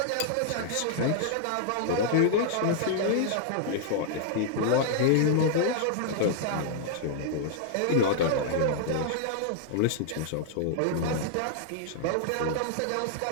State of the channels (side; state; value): both; different; correlation -0.01